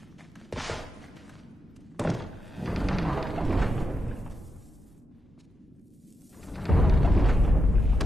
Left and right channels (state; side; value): normal; both; correlation 0.86